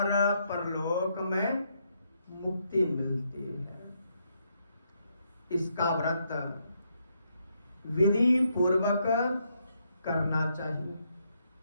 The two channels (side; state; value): both; inverted; correlation -0.77